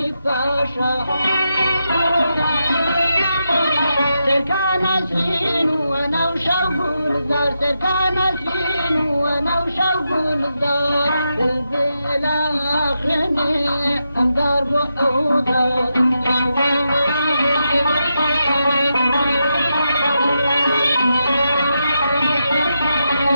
فاشا سركان سين وانا وشوق الزار سركان سين وانا وشوق الزار البلا خيني اندار بحوضة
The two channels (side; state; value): both; inverted; correlation -0.86